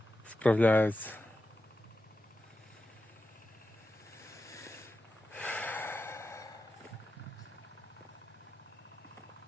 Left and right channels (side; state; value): both; normal; correlation 0.91